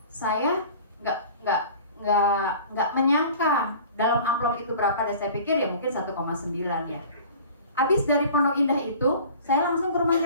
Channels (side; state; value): both; inverted; correlation -0.44